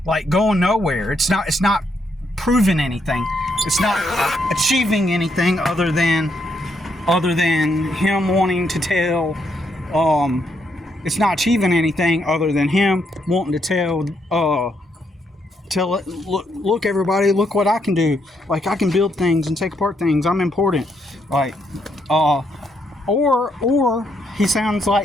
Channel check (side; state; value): both; normal; correlation 0.76